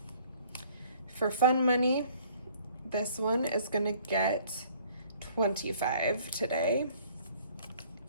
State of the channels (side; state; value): both; inverted; correlation -0.57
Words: For fun money, this one is gonna get 25 today.